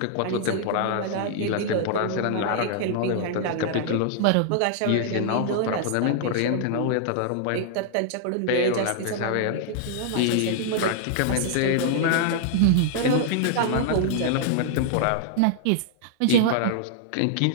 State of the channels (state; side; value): different; both; correlation -0.01